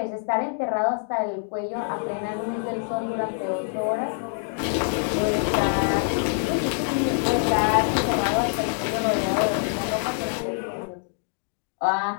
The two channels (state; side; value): silent; right; digital silence